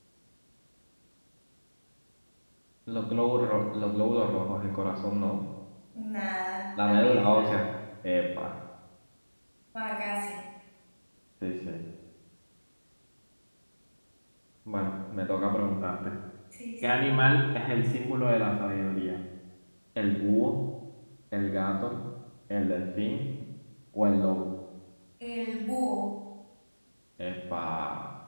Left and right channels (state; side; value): inverted; both; correlation -1.00